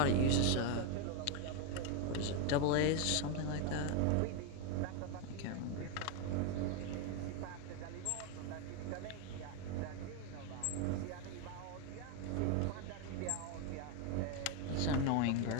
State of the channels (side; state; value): both; different; correlation 0.01